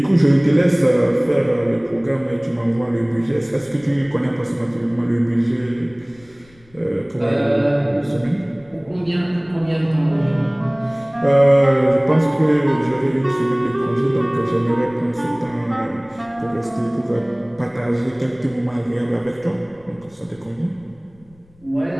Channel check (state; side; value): noise; left; rumble, 28 dB below the sound